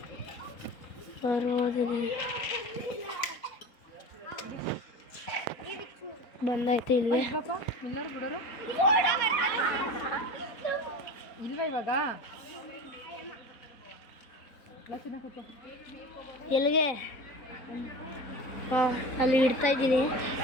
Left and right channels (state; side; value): late; right; 3.9 ms